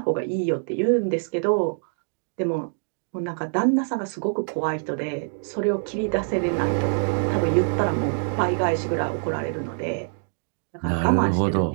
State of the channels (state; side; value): silent; left; digital silence